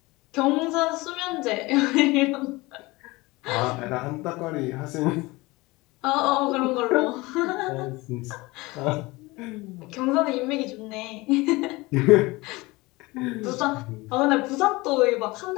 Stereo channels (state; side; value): quieter; right; 22.3 dB